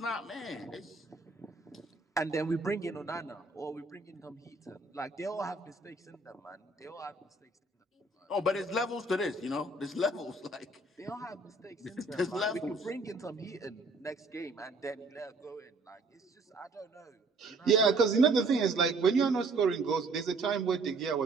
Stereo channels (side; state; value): left; quieter; 3.3 dB